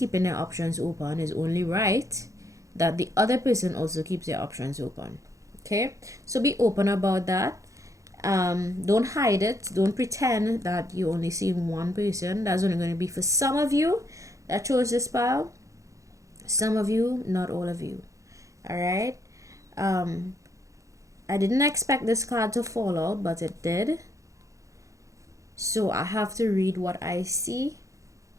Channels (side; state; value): left; late; 0.15 ms